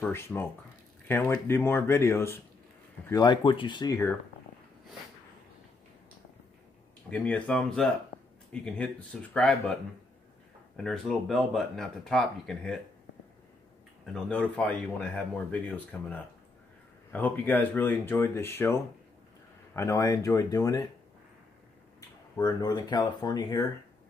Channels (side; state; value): right; quieter; 3.4 dB